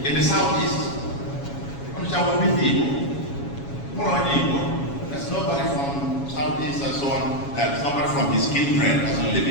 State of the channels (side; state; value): right; late; 7.2 ms